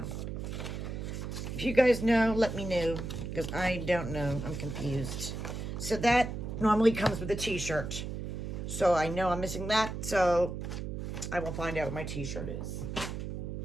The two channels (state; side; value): noise; right; hum, 5 dB below the sound